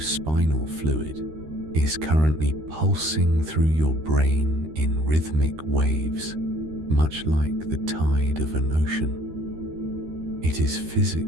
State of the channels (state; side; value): late; left; 13 ms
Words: fluid, is currently pulsing through your brain in rhythmic waves, much like the tide of an ocean. It is